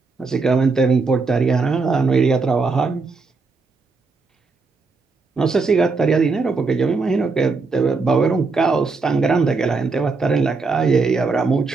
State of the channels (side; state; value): left; quieter; 4.2 dB